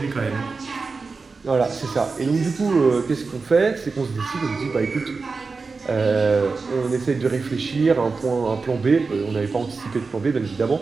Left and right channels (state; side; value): quieter; left; 4.3 dB